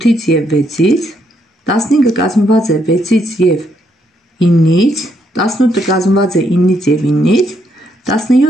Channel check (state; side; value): normal; both; correlation 0.75